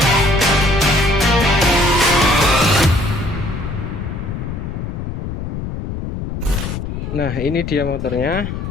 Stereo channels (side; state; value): left; noise; rumble, 6 dB below the sound